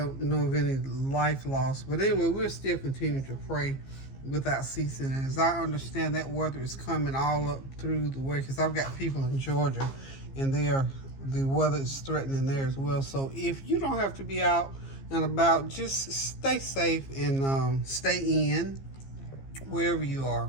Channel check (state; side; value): late; right; 15 ms